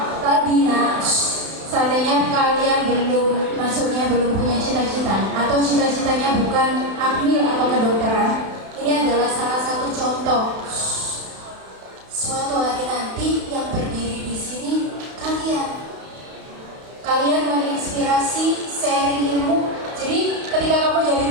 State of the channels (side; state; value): left; late; 32 ms